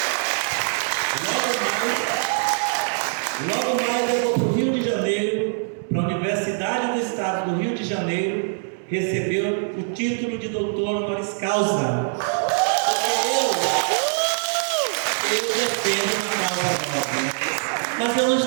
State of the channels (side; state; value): left; silent; 63 dB below the other